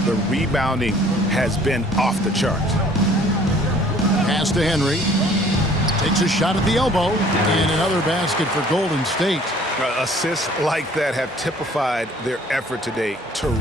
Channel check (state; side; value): normal; both; correlation 0.55